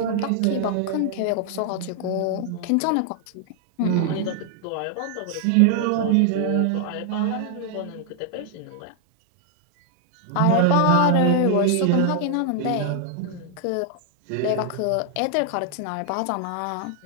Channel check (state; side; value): different; both; correlation 0.00